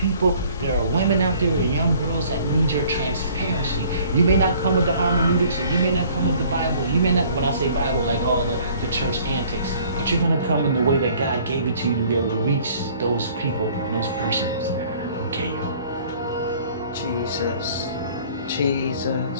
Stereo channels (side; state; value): both; inverted; correlation -0.54